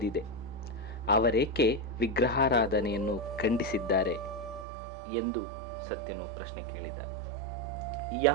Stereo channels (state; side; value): drops out; left; at 4.7 s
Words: ಅವರೇಕೆ ವಿಗ್ರಹಾರಾಧನೆಯನ್ನು ಖಂಡಿಸಿದ್ದಾರೆ ಎಂದು ಸತ್ಯನು ಪ್ರಶ್ನೆ ಕೇಳಿದ.